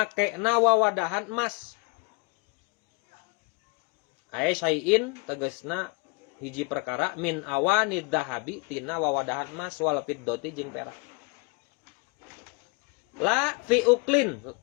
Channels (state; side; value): quieter; right; 29.2 dB